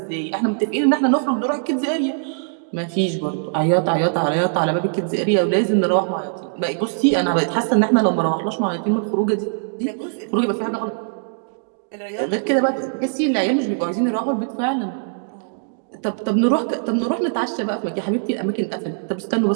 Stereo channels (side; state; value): left; silent; digital silence